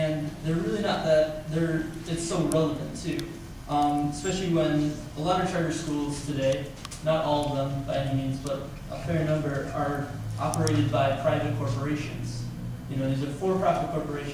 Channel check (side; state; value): both; identical; correlation 1.00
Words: they're really not it's so relevant too. Especially when a lot of charter schools today, not all of them by any means, but a fair number are operated by private corporations. These are for-profit